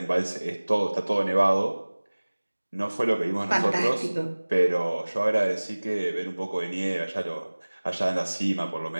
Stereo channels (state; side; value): inverted; both; correlation -1.00